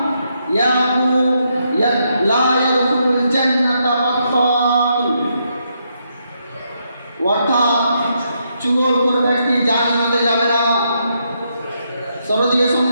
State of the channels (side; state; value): both; inverted; correlation -0.78